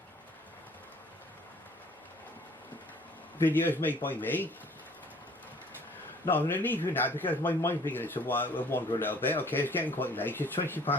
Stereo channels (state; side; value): normal; both; correlation 0.55